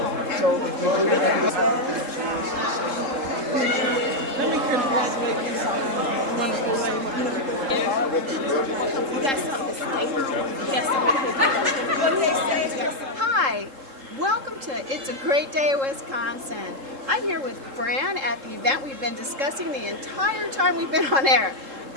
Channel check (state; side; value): late; left; 3.7 ms